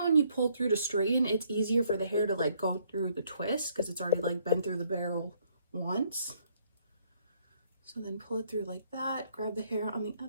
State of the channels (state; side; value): inverted; both; correlation -0.67